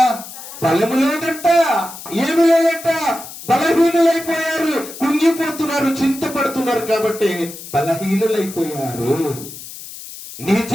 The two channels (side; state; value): left; noise; hiss, 13 dB below the sound